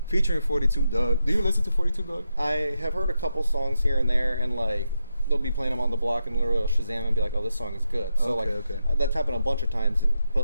featuring 42 Dugg. Do you listen to 42 Dugg? I have heard a couple songs here and there, and like they'll be playing them on the block and literally I'll Shazam and be like, oh, this song is good. So that's happened a bunch of times,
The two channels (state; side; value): inverted; both; correlation -0.86